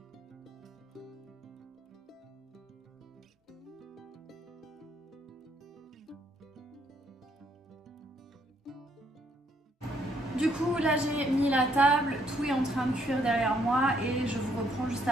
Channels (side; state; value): both; normal; correlation 0.70